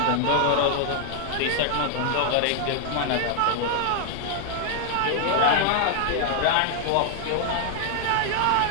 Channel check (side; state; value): both; different; correlation 0.00